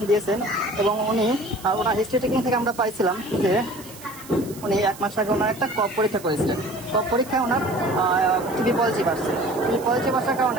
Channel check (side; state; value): right; noise; hiss, 18 dB below the sound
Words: দিয়েছেন। এবং ওনার হিস্ট্রি টেকিং থেকে আমরা পাইছিলাম যে উনি 1 মাস আগে ওনার একটা কফ পরীক্ষা করেছিলেন। কফ পরীক্ষায় ওনার টিবি পজিটিভ আসছে। টিবি পজিটিভ আসার